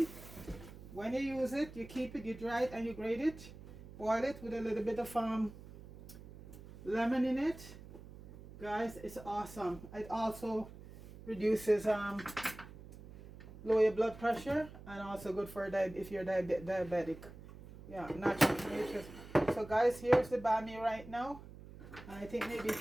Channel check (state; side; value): noise; right; hum, 16 dB below the sound